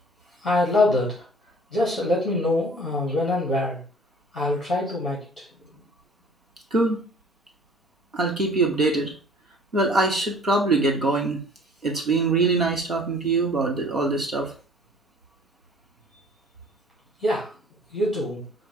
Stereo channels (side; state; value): both; normal; correlation 0.51